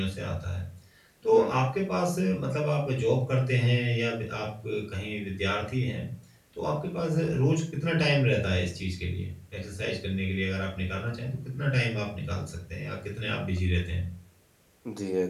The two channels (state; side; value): identical; both; correlation 1.00